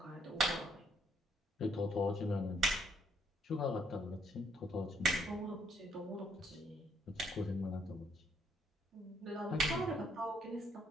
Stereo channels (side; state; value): both; normal; correlation 0.70